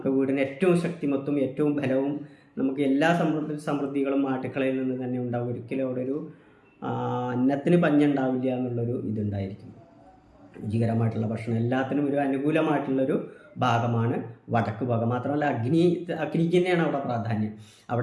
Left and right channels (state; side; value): identical; both; correlation 1.00